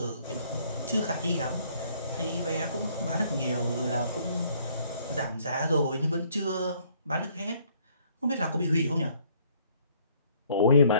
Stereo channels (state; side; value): inverted; both; correlation -0.63